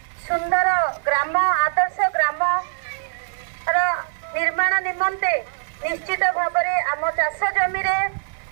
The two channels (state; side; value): silent; left; 64 dB below the other